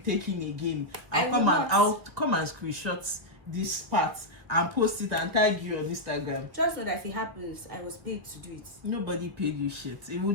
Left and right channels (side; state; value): left; late; 1.7 ms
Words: in again, I'll come and screenshot this part and post it and tag you on Instagram. Just know that if it happens, I was paid to do it. Nobody paid you shit. It will